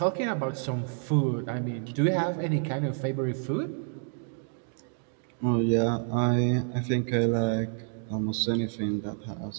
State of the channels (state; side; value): silent; left; 59 dB below the other